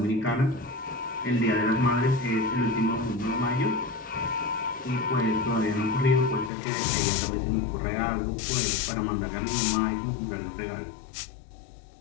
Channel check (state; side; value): drops out; right; at 6.5 s